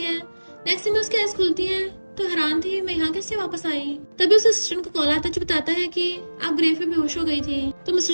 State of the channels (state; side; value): inverted; both; correlation -1.00